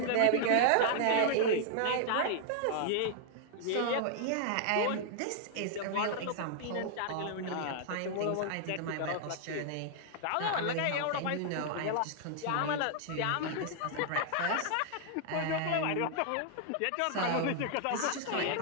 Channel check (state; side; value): different; both; correlation -0.01